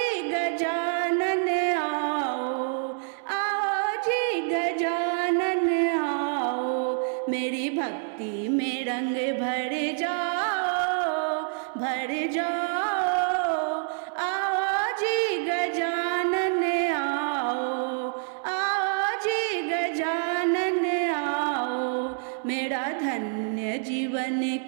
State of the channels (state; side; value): silent; left; 60 dB below the other